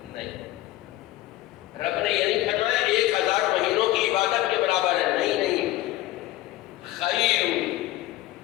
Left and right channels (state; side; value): quieter; right; 16.3 dB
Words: نہیں. رب نے یہ نہیں فرمایا 1000 مہینوں کی عبادت کے برابر ہے. نہیں، خیر،